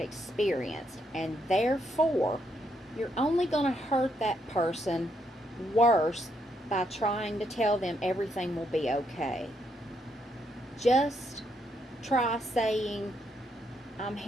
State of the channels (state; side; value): normal; both; correlation 0.76